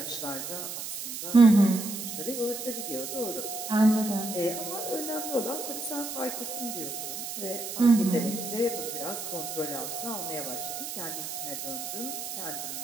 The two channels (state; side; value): noise; right; hiss, 6 dB below the sound